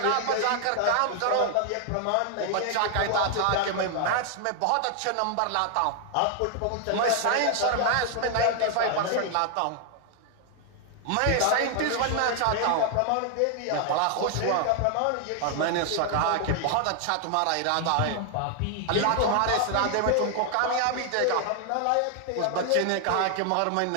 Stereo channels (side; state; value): both; different; correlation 0.00